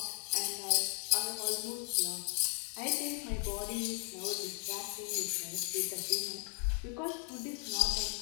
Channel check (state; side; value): quieter; right; 37.9 dB